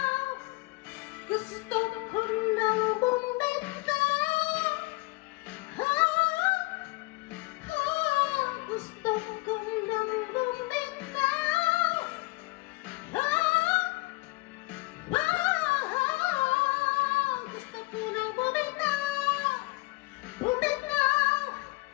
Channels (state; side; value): quieter; right; 23.7 dB